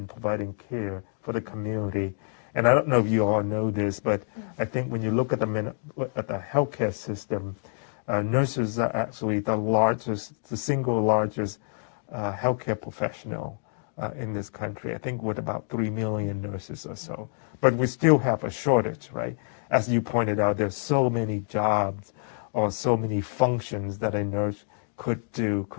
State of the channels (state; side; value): silent; right; digital silence